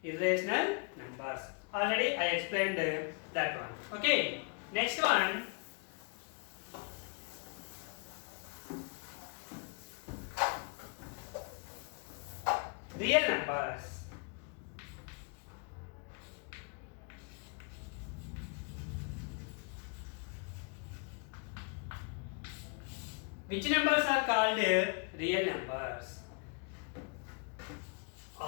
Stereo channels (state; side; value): quieter; right; 34.8 dB